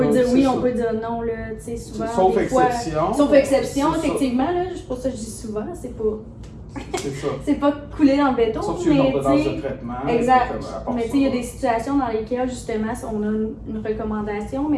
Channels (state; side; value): identical; both; correlation 1.00